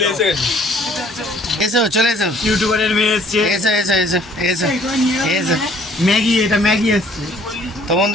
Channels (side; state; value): both; normal; correlation 0.58